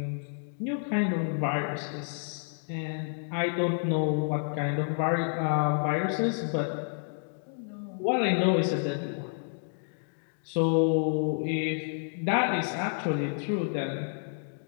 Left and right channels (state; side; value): silent; right; digital silence